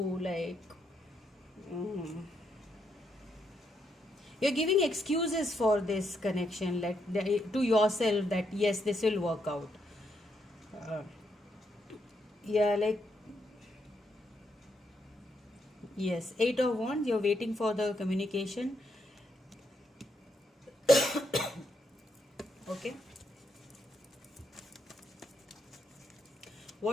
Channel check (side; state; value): both; normal; correlation 0.78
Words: like you're giving excuses for this connection, like to yourself, that yes, this will work out. Yeah, like, yes, Eight of Wands, you're waiting for the communication. Okay.